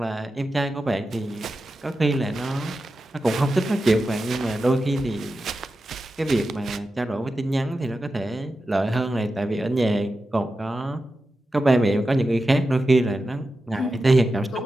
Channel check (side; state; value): both; normal; correlation 0.91